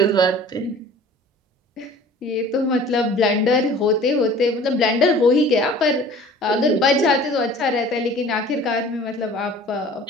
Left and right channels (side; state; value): both; normal; correlation 0.46